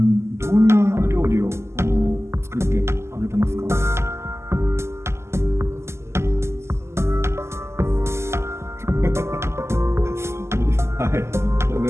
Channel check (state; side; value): late; left; 0.13 ms